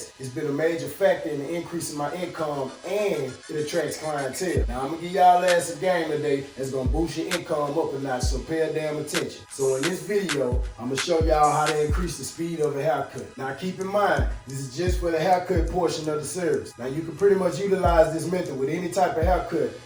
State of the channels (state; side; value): identical; both; correlation 1.00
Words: It's been a major factor in the increase in my income, and it attracts clientele. Now, I'm gonna give y'all ass a game today that's gonna boost your income up a notch, so pay a damn attention. So in this video, I'm gonna show y'all how to increase the speed of a haircut. Now, keep in mind, this is just for the haircut portion of the service. Now, you can pretty much utilize this method with any type of haircut.